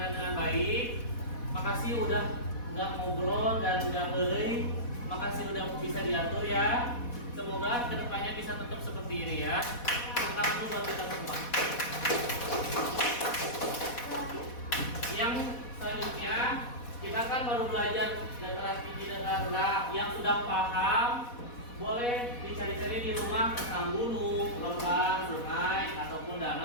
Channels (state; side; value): late; right; 4.1 ms